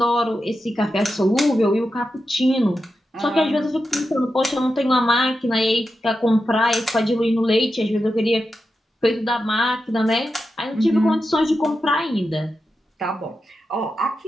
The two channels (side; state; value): both; normal; correlation 0.89